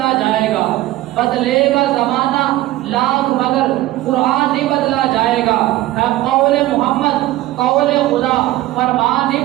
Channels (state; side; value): quieter; left; 16.2 dB